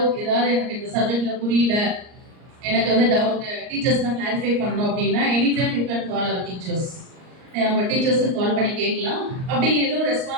ஏதாவது எனக்கு இந்த சப்ஜெக்ட்ல புரியல, எனக்கு வந்து டவுட் டீச்சர்ஸ் தான் கிளாரிஃபை பண்ணணும் அப்படின்னா, any time you can call our teachers. நம்ம டீச்சர்ஸ்க்கு கால் பண்ணி கேட்கலாம். அப்படி எதுவும்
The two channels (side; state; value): left; late; 38 ms